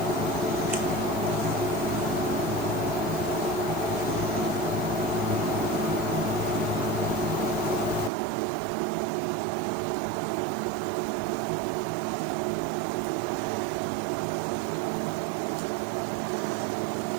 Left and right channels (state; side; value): drops out; left; at 8.1 s